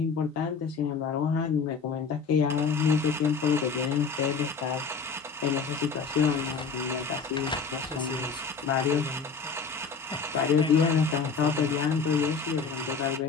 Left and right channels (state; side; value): quieter; right; 5.3 dB